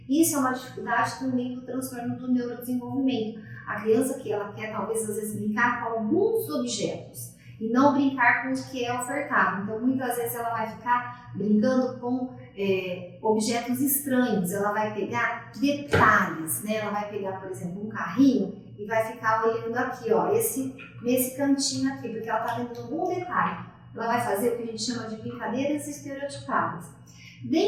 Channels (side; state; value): both; identical; correlation 1.00